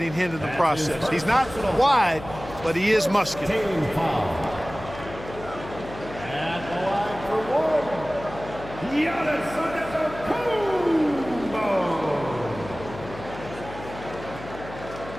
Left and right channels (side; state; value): left; noise; hum, 13 dB below the sound